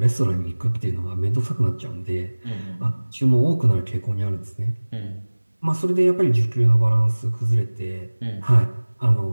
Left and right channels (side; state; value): both; inverted; correlation -1.00